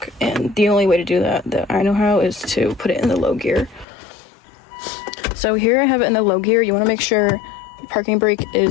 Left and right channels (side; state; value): right; drops out; at 3.9 s